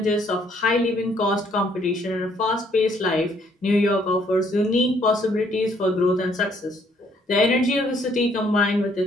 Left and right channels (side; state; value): both; normal; correlation 0.66